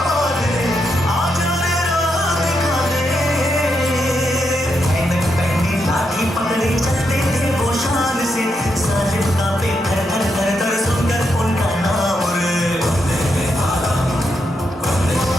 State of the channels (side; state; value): both; normal; correlation 0.82